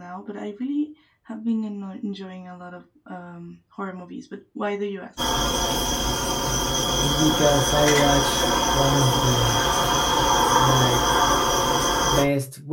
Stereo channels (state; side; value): identical; both; correlation 1.00